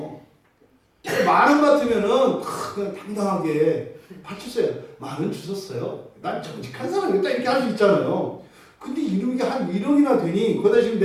10,000원 같으면은 그냥 당당하게 바쳤어요. 10,000원 주셨어요. 난 정직한 사람이다 이렇게 할 수 있잖아요. 근데 이게 한 1억이나 되니 거기다 지금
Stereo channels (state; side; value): identical; both; correlation 1.00